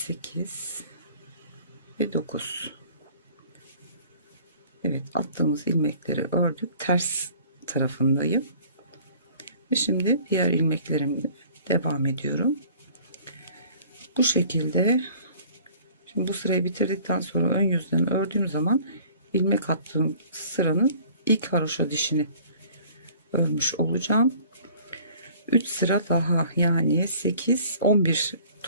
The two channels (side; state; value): both; inverted; correlation -0.51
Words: ve 9. Evet, attığımız ilmekleri ördük. Ters tarafındayım. Ve şimdi diğer ilmeklerimle devam ediyorum. Bu şekilde. Şimdi bu sırayı bitirdikten sonra ön yüzden ördüğüm zaman ilmek attığım sıranın ilk haroşa dişini örmüş olacağım. 3 sıra daha, yani 8 11